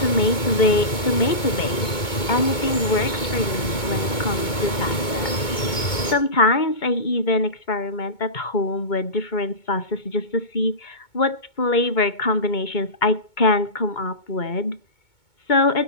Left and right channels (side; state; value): right; late; 2.2 ms